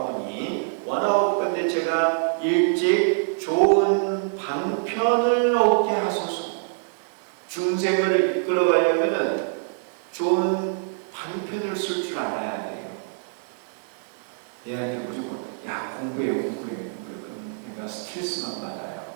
원하옵건대 제가 일찍 좋은 방편을 얻게 하소서. 중생을 이끌어가려면 좋은 방편을 쓸 줄 알아야 돼요. 얘한테 무조건 야 공부해. 그럼 얘가 스트레스만 받아요.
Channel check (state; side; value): silent; left; digital silence